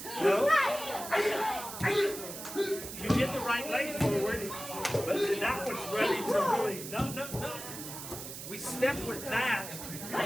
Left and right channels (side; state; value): right; noise; hiss, 10 dB below the sound